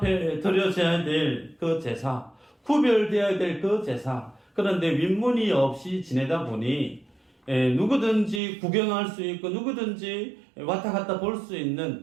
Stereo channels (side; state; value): left; drops out; at 8.4 s